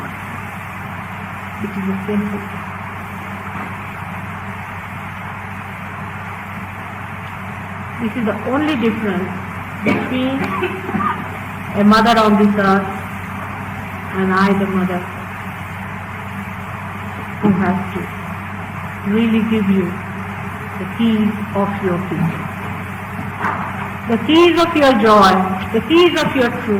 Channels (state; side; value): identical; both; correlation 1.00